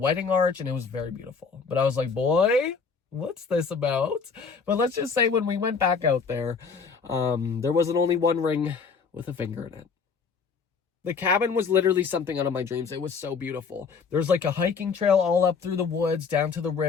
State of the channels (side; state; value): right; quieter; 5.5 dB